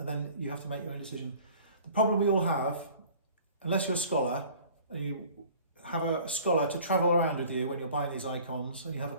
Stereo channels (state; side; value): inverted; both; correlation -0.48